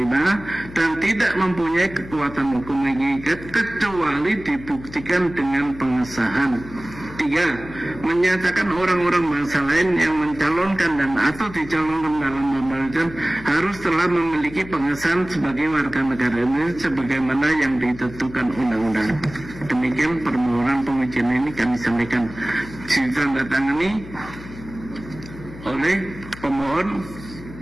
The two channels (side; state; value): left; noise; hum, 15 dB below the sound